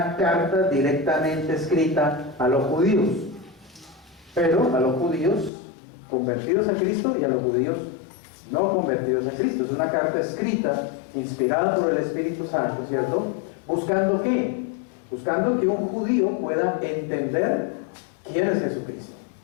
carta directamente escrita a los judíos, pero a los judíos convertidos a Cristo y a los judíos no convertidos a Cristo. Es una carta escrita, inspirada por el Espíritu Santo, ¿cierto? ¿Buscando qué? Buscando que un judío pueda entender quién es Jesucristo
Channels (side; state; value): right; drops out; at 5.5 s